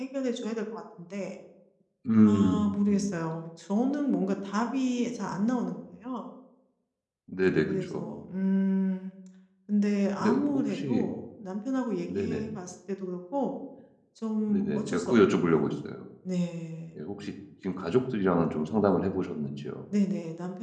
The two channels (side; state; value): both; identical; correlation 1.00